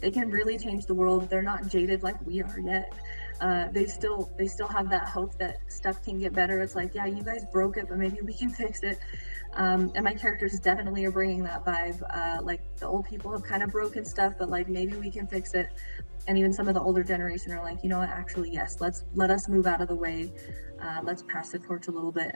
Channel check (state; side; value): inverted; both; correlation -1.00